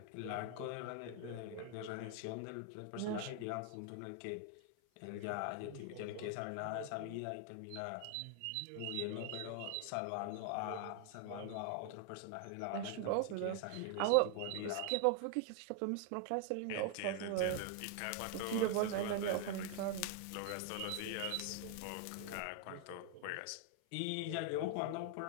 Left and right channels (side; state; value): both; different; correlation 0.00